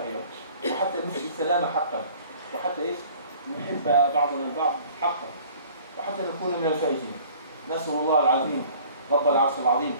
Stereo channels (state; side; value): inverted; both; correlation -0.50